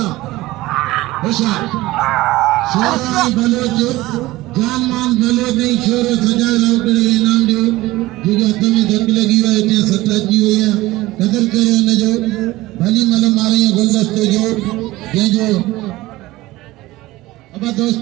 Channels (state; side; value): quieter; left; 18.4 dB